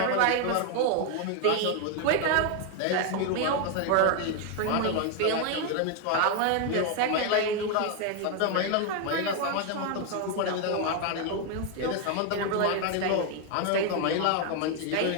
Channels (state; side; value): different; both; correlation 0.01